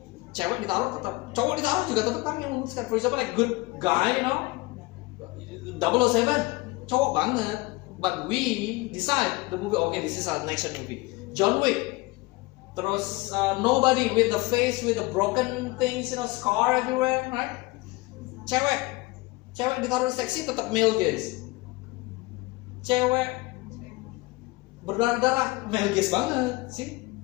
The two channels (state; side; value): quieter; right; 22.6 dB